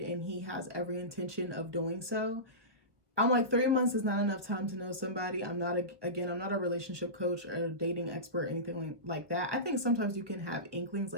he has every intention of doing so. I'm like, 3 months is not enough time to know somebody. I'm not a relationship coach or a dating expert or anything like that. I think sometimes you can have inklings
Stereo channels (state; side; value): late; left; 1.3 ms